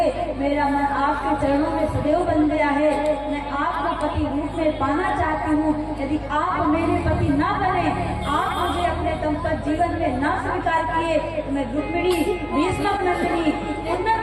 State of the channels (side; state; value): both; identical; correlation 1.00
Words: मेरा मन आपके चरणों में सदैव बन गया है। मैं आपको पति रूप में पाना चाहती हूँ। यदि आप मेरे पति न बने, आप मुझे अपने दंपत जीवन में न स्वीकार किए तो मैं रुक्मिणी भीष्मक नंदिनी